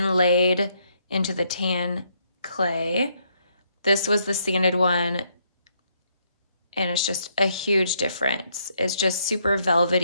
into the tan clay. This was the sanded one, and it's just a huge difference. It's just super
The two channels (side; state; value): both; inverted; correlation -0.72